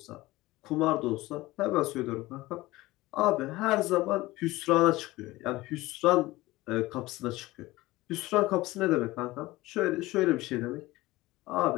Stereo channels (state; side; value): quieter; right; 18.9 dB